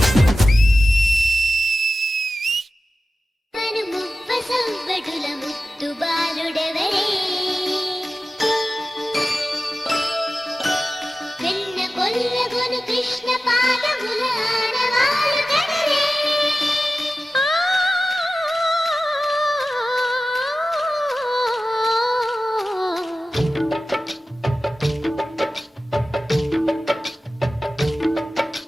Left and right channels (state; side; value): normal; both; correlation 0.94